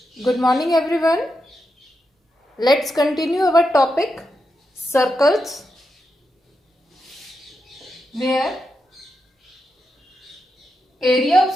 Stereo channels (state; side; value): normal; both; correlation 0.86